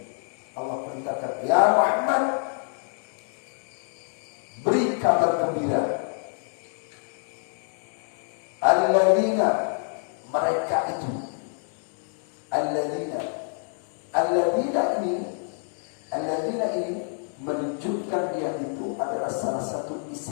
Allah perintahkan, ya Muhammad, beri kabar gembira alladzina, mereka itu, alladzina ini menunjukkan dia itu adalah salah satu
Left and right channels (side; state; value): right; silent; 59 dB below the other